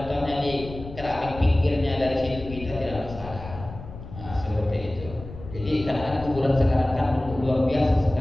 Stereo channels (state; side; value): noise; left; rumble, 13 dB below the sound